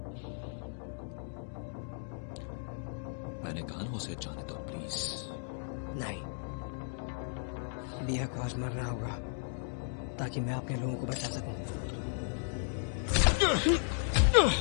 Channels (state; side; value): silent; right; digital silence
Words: मैंने कहा ना उसे जाने दो प्लीज। नहीं, बिया को आज मरना होगा ताकि मैं अपने लोगों को बचा सकूं।